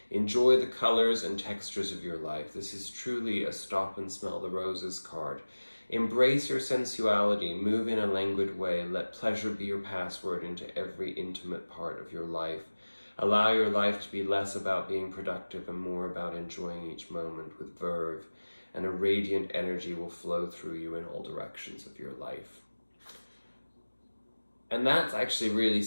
Enjoy the colors and textures of your life. This is truly a stop and smell the roses card. Embrace your sensuality. Move in a languid way. Let pleasure be your password into every intimate part of your life. Allow your life to be less about being productive and more about enjoying each moment with verve, and a radiant energy will flow through you in all directions of your life. And that's actually really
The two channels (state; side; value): inverted; both; correlation -1.00